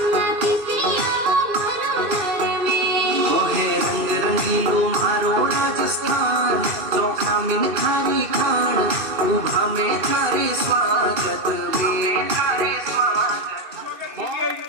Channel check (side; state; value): left; late; 2.7 ms